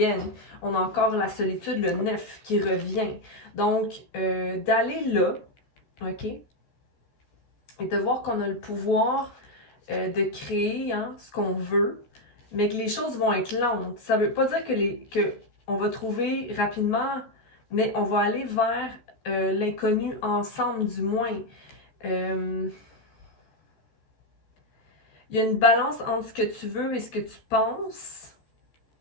On a encore la solitude, le 9 qui revient. Donc, d'aller là, OK? Et de voir qu'on a le pouvoir de créer ce qu'on veut, mais que les choses vont être lentes. Ça veut pas dire que on va trouver rapidement, mais on va aller vers l'inconnu ensemble, du moins. Il y a une balance entre ce que tu veux et ce que tu penses.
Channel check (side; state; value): right; late; 13 ms